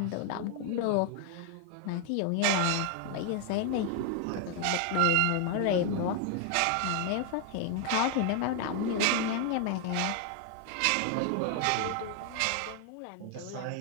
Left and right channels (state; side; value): different; both; correlation 0.01